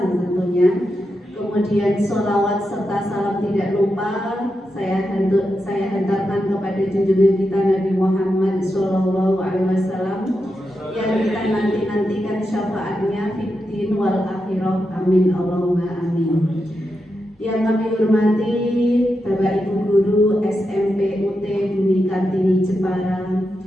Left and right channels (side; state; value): both; normal; correlation 0.87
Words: tentunya. Kemudian sholawat serta salam tidak lupa saya hantarkan kepada junjungan kita Nabi Muhammad SAW yang kita nantikan syafaatnya fiddin wal akhirah, amin Allahumma amin. Yang kami hormati Bapak Ibu Guru SMP UT Bumi Kartini Jepara,